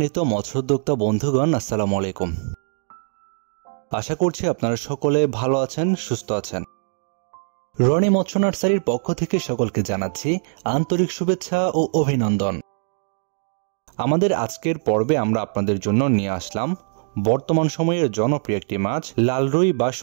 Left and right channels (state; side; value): silent; left; digital silence